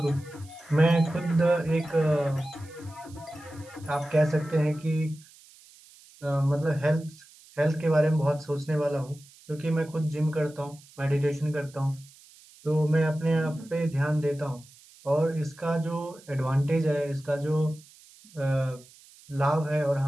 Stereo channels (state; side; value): noise; right; hiss, 24 dB below the sound